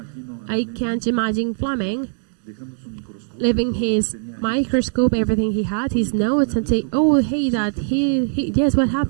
I can't imagine Fleming leaving his microscope, everything he had, his notes, and say, oh, hey, Dad, yes, what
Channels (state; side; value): silent; left; digital silence